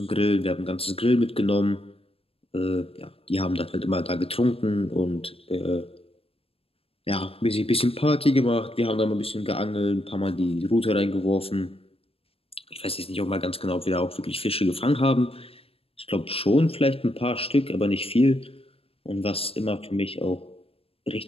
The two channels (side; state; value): right; late; 0.28 ms